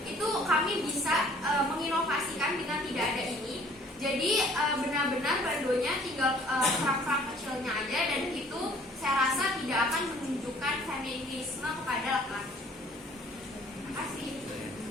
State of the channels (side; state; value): both; normal; correlation 0.55